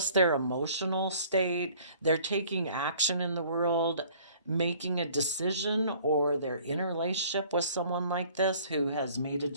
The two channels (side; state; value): both; inverted; correlation -0.54